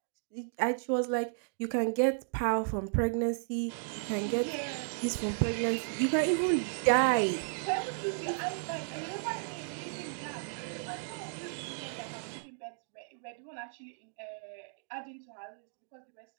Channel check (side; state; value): left; silent; digital silence